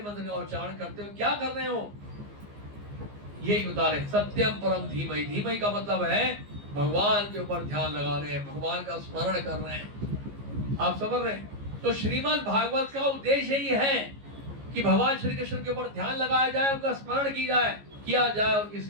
का उच्चारण करते हो क्या कर रहे हो? यही बता रहे सत्यम परम धीमहि। धीमहि का मतलब है भगवान के ऊपर ध्यान लगा रहे हैं, भगवान का स्मरण कर रहे हैं। आप समझ रहे हैं? तो श्रीमद् भागवत का उद्देश्य ही है कि भगवान श्री कृष्ण के ऊपर ध्यान लगाया जाए, उनका स्मरण किया जाए, उनकी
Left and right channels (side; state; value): left; late; 15 ms